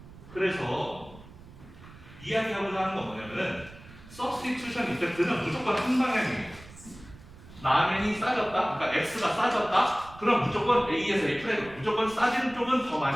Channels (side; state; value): right; noise; rumble, 19 dB below the sound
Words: 그래서 이야기하고자 하는 건 뭐냐면은 서브스티튜션 이펙트는 무조건 한 방향이에요. 라면이 싸졌다, 그러니까 X가 싸졌다, 그럼 무조건 A에서 A 프라임, 무조건 싸지는 쪽은 더